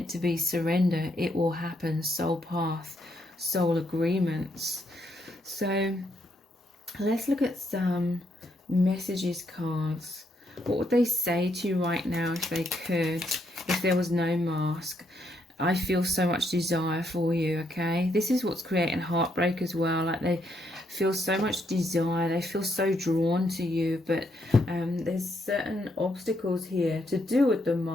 to be surrender, it will happen, soul path, soul agreements. So let's look at some messages cards. What would they say to you right now if they could, if there was no mask? I feel so much desire for you, okay? This is what's creating heartbreak as well. Like they feel so much desire, they feel so drawn to you, but there's certain obstacles here to do with the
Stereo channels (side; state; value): both; normal; correlation 0.75